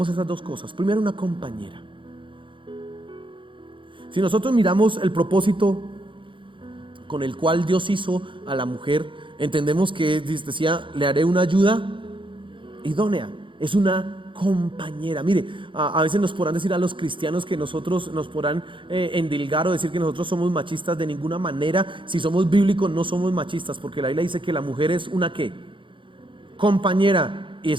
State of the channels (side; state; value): left; late; 0.24 ms